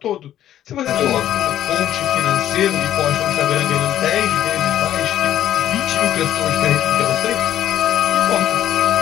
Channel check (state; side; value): quieter; right; 11.8 dB